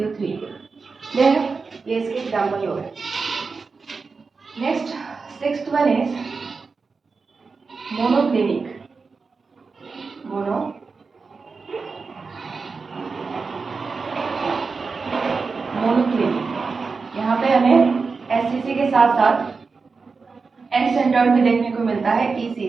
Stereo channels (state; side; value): quieter; left; 4.6 dB